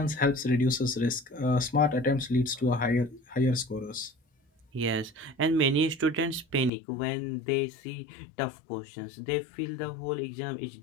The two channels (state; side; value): drops out; right; at 6.7 s